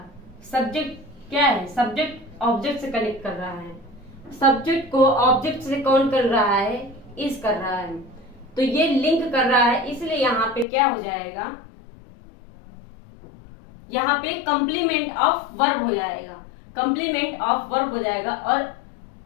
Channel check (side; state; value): right; drops out; at 10.7 s